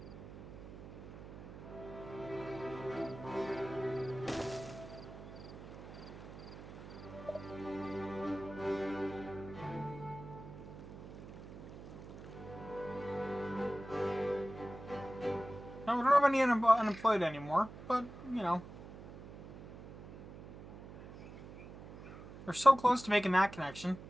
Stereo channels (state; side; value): noise; right; hum, 14 dB below the sound